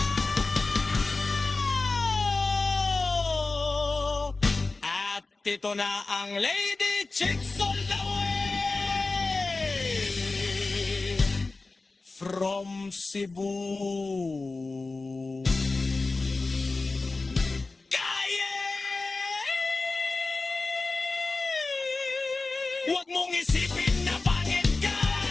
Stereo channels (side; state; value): right; quieter; 3.6 dB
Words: At ito na ang Lady Chicks all the way from Cebu. Huwag mong isipin na pangit ka.